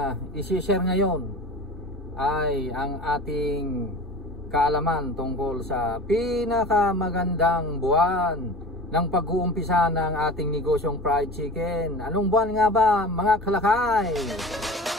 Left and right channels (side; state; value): both; normal; correlation 0.36